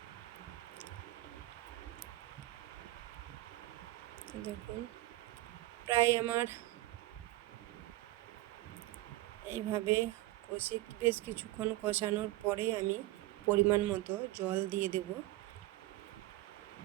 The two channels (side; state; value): left; quieter; 17.8 dB